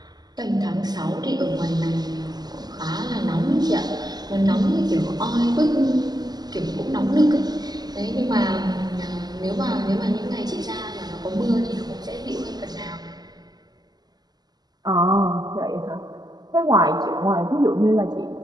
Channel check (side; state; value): left; late; 0.20 ms